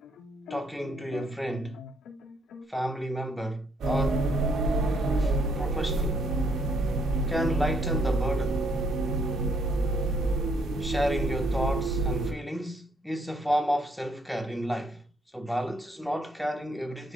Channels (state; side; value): normal; both; correlation 0.70